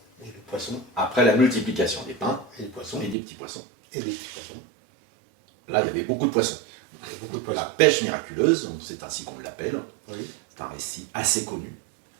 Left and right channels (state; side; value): drops out; left; at 3.2 s